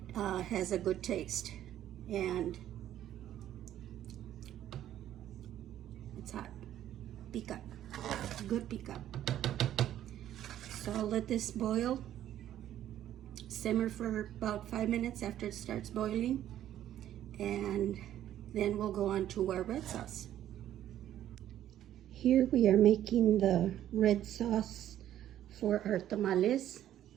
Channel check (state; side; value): quieter; left; 11.8 dB